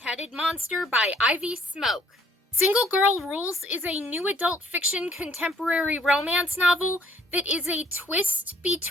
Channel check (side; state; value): both; normal; correlation 0.62